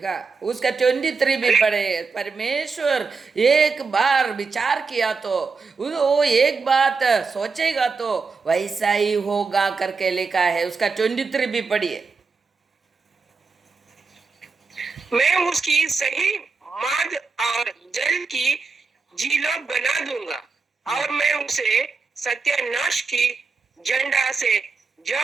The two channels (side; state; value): left; quieter; 4.7 dB